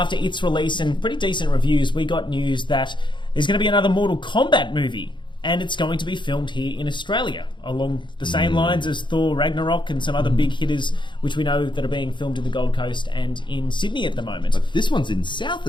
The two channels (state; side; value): late; right; 0.23 ms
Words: its release and pretty decent reviews, we got news that there's going to be another Mortal Kombat movie, and it's going to be filmed here in Australia, along the same lines as Thor Ragnarok and some other big hitters, which we know that are being filmed in the Gold Coast and in Sydney at the moment. But this one's in South